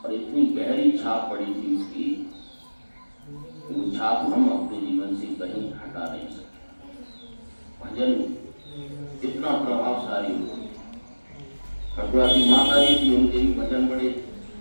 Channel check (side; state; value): both; inverted; correlation -1.00